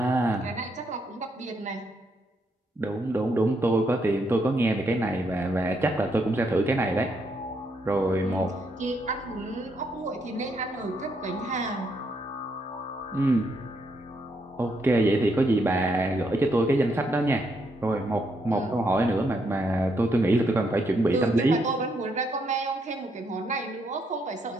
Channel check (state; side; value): normal; both; correlation 0.76